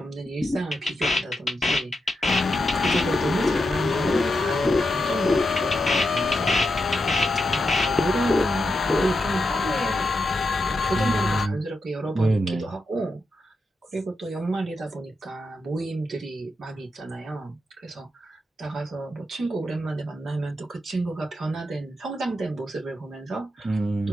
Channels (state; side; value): normal; both; correlation 0.86